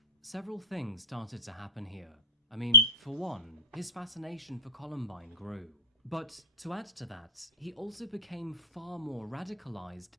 Several things started to happen here. I mean, for one, his fascination for Columbine grew. But to add to that, he also became far more radicalized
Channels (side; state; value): both; normal; correlation -0.14